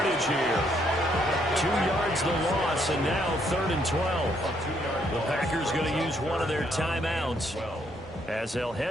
here. 2 yards the loss, and now 3rd and 12. The Packers going to use one of their timeouts as they'll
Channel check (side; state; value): both; normal; correlation 0.71